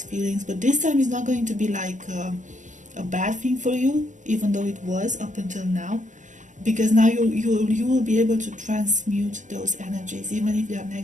feelings, but this time it's not going to be like a bad thing for you, even though it was up until now. Because now you will be able to transmute those energies, even if they are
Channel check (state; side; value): late; left; 0.36 ms